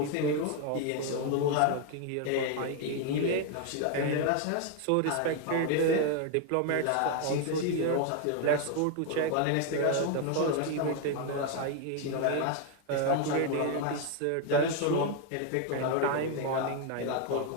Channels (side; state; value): both; different; correlation 0.01